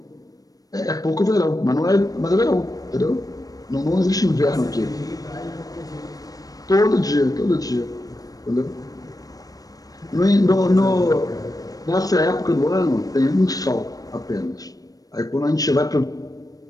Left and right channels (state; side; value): late; right; 0.18 ms